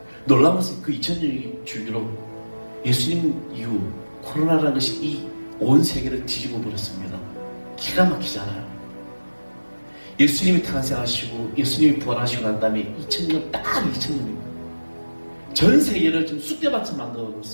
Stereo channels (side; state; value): both; inverted; correlation -1.00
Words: 놀라운 것은 그 2000년 주기로 예수님 이후 코로나라는 것이 이 온 세계를 뒤집어 버렸습니다. 기가 막히잖아요. 예수님이 탄생하시고 예수님이 부활하시고 난 다음에 2000년 딱 2000년입니다. 전 세계를 지금 쑥대밭을 만들어